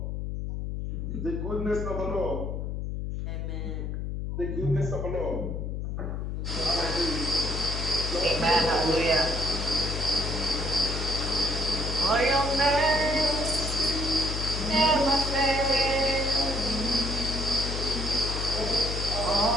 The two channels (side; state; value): left; noise; hum, 3 dB below the sound